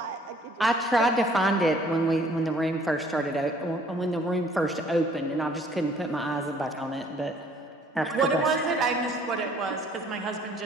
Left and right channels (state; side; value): normal; both; correlation 0.58